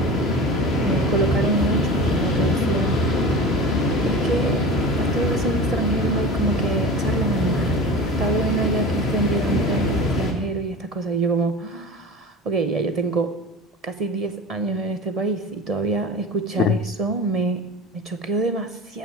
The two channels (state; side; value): normal; both; correlation 0.33